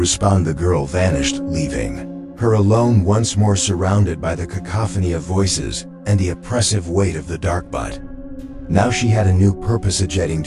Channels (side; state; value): both; identical; correlation 1.00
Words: the girl vanished, leaving her alone once more, surrounded by the cacophony of voices and the oppressive weight of the dark. But now she had a new purpose. Jetting